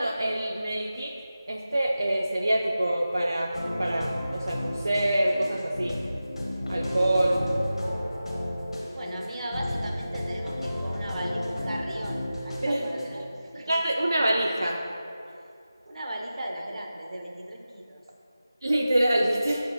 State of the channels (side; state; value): both; inverted; correlation -0.94